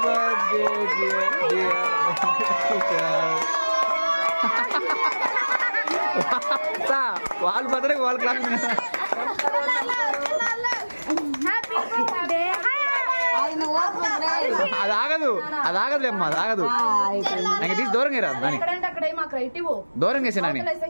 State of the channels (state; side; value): inverted; both; correlation -1.00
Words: బర్త్డే వాళ్ళ బర్త్డే వాళ్ళ క్లాస్. అది ఆగదు, అమ్మా, అది ఆగదు. ఇంకా తీసి దూరంగా రా, దూరంగా వేసా నాని.